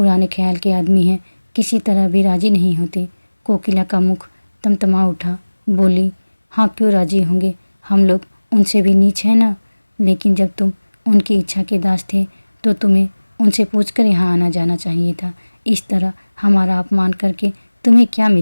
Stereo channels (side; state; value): both; inverted; correlation -1.00